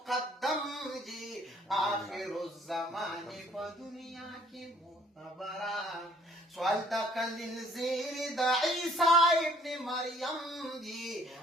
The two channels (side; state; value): both; normal; correlation 0.59